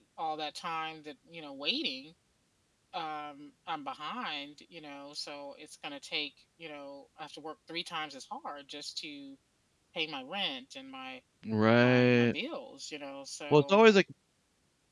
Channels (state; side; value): identical; both; correlation 1.00